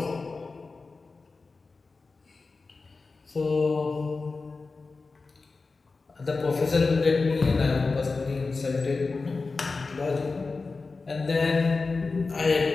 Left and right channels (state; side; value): quieter; right; 4.0 dB